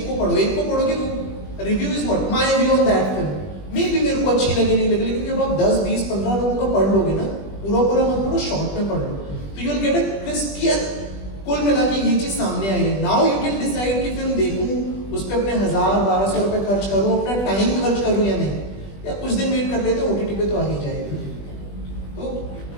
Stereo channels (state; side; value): late; right; 20 ms